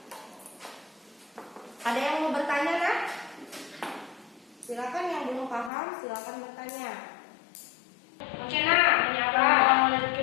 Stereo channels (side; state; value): right; drops out; at 5.7 s